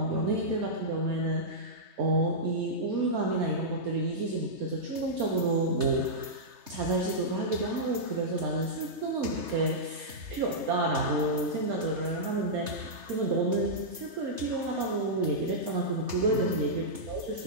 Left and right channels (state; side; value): late; left; 3.3 ms